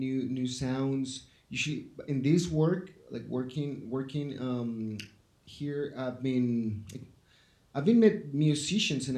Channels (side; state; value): both; identical; correlation 1.00